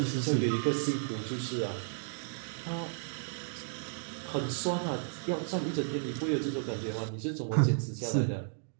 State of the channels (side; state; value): left; silent; digital silence